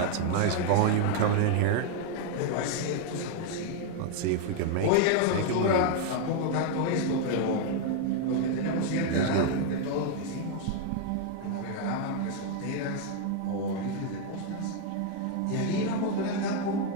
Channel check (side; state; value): both; different; correlation 0.00